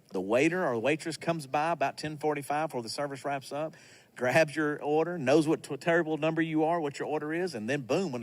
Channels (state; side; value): identical; both; correlation 1.00